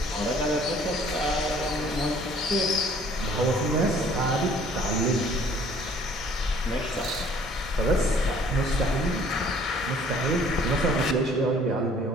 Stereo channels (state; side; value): normal; both; correlation 0.56